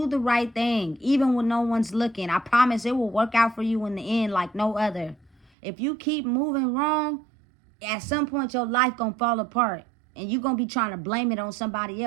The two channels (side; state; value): left; drops out; at 5.5 s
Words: the right thing, even when no one's looking. I promise it will work out for you in the end like no other. If you keep moving wrong, at some point your life gonna fall apart. And you're gonna be trying to blame it on somebody